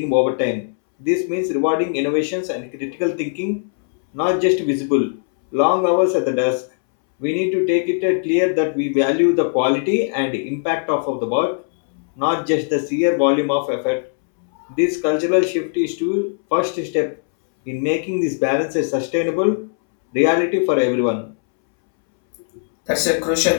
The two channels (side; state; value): right; silent; 66 dB below the other